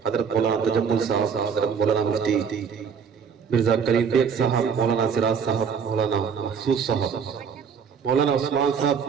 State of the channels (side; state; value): left; quieter; 6.5 dB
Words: हजरत मौलाना तजम्मुल साहब, हजरत मौलाना मुफ्ती मिर्जा करीम बेग साहब, मौलाना सिराज साहब, मौलाना महसूस साहब, मौलाना उस्मान साहब,